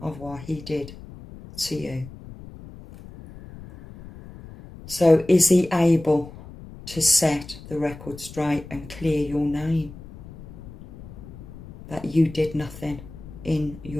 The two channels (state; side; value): noise; left; rumble, 16 dB below the sound